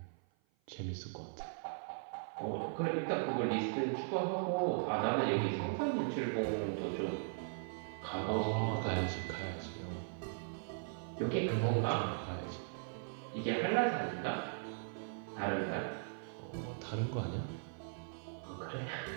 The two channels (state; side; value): silent; left; 52 dB below the other